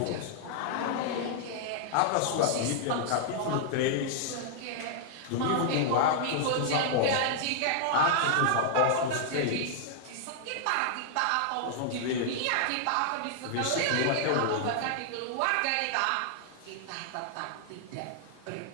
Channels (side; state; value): both; different; correlation -0.01